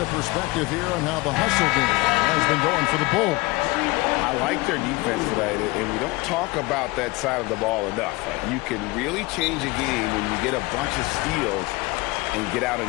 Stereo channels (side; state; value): right; quieter; 22.9 dB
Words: a perspective here on how the hustle game has been going for the Bulls. I like their defense tonight, and we don't talk about that side of the ball enough. You can really change a game when you get a bunch of steals and get out